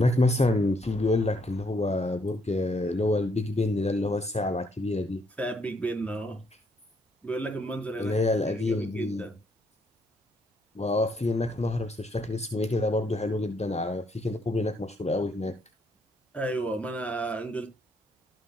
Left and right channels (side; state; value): both; normal; correlation 0.71